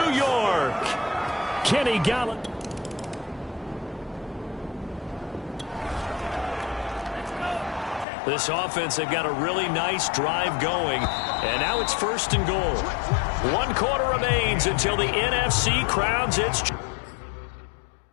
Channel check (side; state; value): right; drops out; at 8.1 s